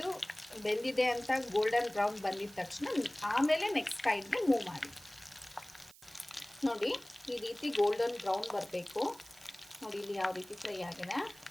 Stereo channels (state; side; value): noise; right; hiss, 22 dB below the sound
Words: ಬೆಂದಿದೆ ಅಂತ ಗೋಲ್ಡನ್ ಬ್ರೌನ್ ಬಂದಿದ ತಕ್ಷಣ ಆಮೇಲೆ ನೆಕ್ಸ್ಟ್ ಸೈಡ್ಗೆ ಮೂವ್ ಮಾಡಿ. ನೋಡಿ, ಈ ರೀತಿ ಗೋಲ್ಡನ್ ಬ್ರೌನ್ ಬರಬೇಕು. ನೋಡಿ, ಇಲ್ಲಿ ಯಾವ ರೀತಿ ಫ್ರೈ ಆಗಿದೆ